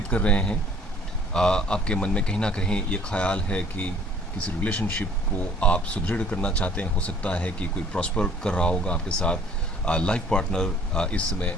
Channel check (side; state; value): both; normal; correlation 0.55